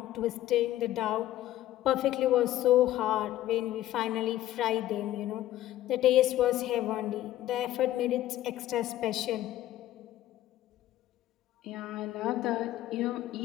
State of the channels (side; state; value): right; quieter; 14.0 dB